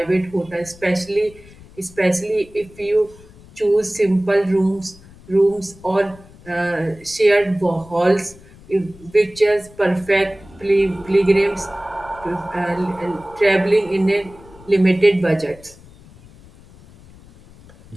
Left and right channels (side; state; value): left; noise; rumble, 23 dB below the sound